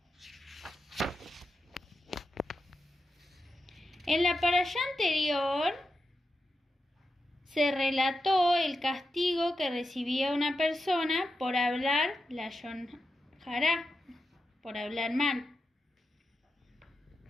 En la parashá anterior se relató el castigo que recibía una persona por hablar lashon hará, por hablar mal.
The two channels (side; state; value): both; normal; correlation 0.89